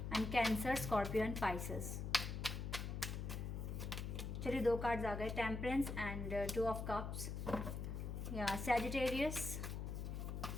and Cancer, Scorpio and Pisces. चलिए 2 कार्ड्स आ गए, Temperance and 2 of Cups, या Sagittarius,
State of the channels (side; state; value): left; noise; hum, 4 dB below the sound